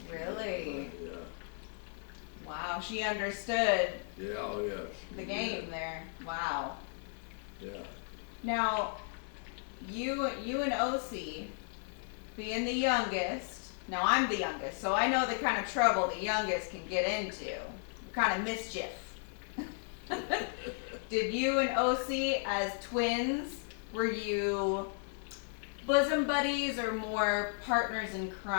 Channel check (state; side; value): silent; right; 54 dB below the other